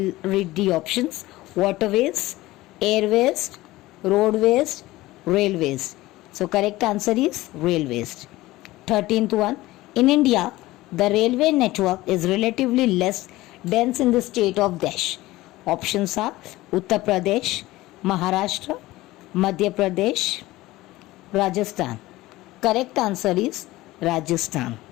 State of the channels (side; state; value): right; quieter; 18.1 dB